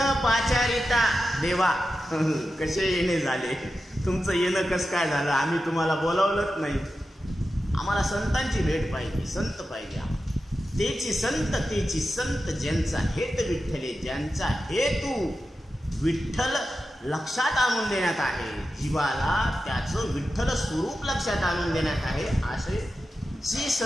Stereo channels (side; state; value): both; normal; correlation 0.91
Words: पाचारिता देवा कसे येणे झाले, तुमचं येणं कस काय झालं, आम्ही तुम्हाला बोलावलंच नाही, आम्हाला संतांची भेट पाहिजे, संत पाहिजे। तेची संत ज्यांचा हेत विठ्ठले, ज्यांचा हेतू विठ्ठल लक्षात आणून देण्यात आहे, जीवाला त्याचं विठ्ठल स्वरूप लक्षात आणून देण्यात आहे, असे जे